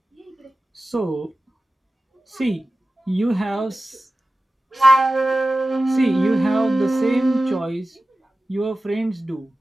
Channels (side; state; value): both; normal; correlation 0.95